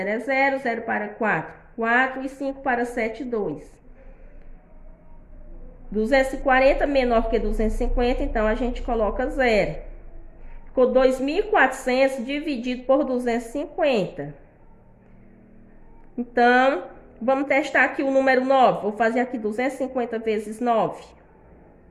é 0. 0 para 4, 4. E 5 para 7, 2. 240 menor que 250, então, a gente coloca 0. Ficou 2.400 dividido por 250. Então, vamos testar aqui o número 9. Vou fazer aqui 250 vezes 9.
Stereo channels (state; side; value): identical; both; correlation 1.00